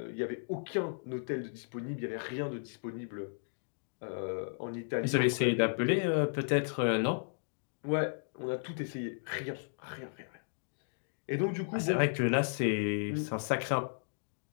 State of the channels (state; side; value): silent; right; digital silence